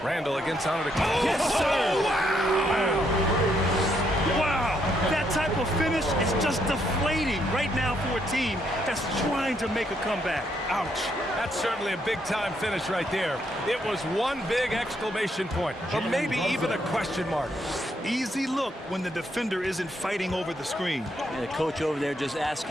Randall against Antetokounmpo. Yes, sir! Wow! That type of finish is just deflating right now for a team that's trying to make a comeback. Ouch. That's certainly a big-time finish right there. It was one big exclamation point, or maybe even a question mark. Easy look when the defender isn't fighting over the screen. And the coach over there just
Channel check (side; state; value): both; normal; correlation 0.75